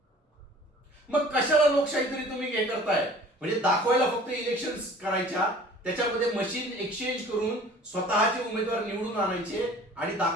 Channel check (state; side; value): normal; both; correlation 0.48